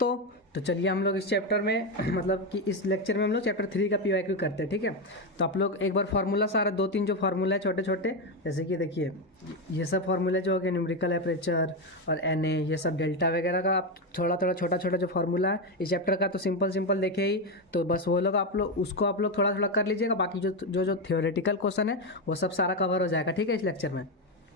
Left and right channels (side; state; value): both; normal; correlation 0.10